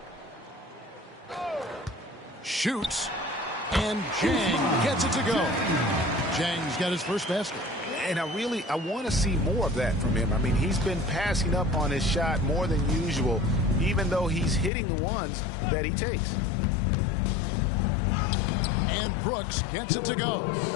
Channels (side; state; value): right; drops out; at 14.7 s